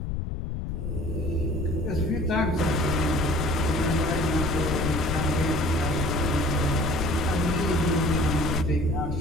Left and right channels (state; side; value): noise; left; rumble, 3 dB below the sound